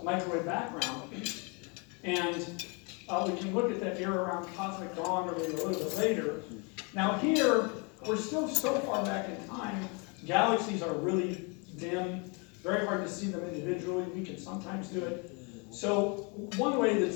microwave background, and we can look at that era around cosmic dawn or maybe a little bit later. Now here, we're still so far back in time, galaxies are really dim, very hard to see them individually. We can sometimes do it. So one way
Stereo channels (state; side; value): quieter; right; 32.6 dB